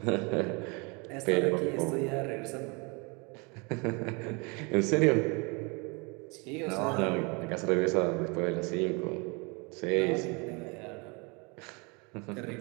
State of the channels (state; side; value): quieter; left; 30.2 dB